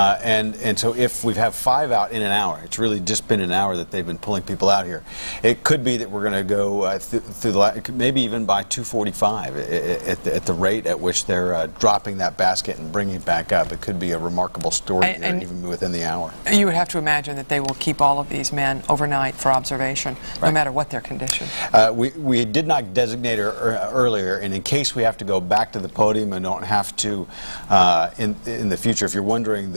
so if we have 5 out in an hour, it's really just been an hour that they've been pulling people out here. It could be that we're going to go through maybe even by 2:45 at the rate at which they're dropping that basket and bringing it back up. It could be a remarkable story and even within the hour. You would have to imagine that they will keep all of these men overnight for observation, no matter what their condition. We did not designate her earlier, and in case we have to go back to the podium and don't have to in the future, if you're wondering,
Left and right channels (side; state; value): both; inverted; correlation -1.00